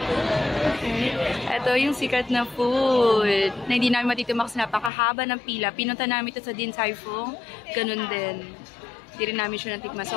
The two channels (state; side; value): drops out; right; at 4.9 s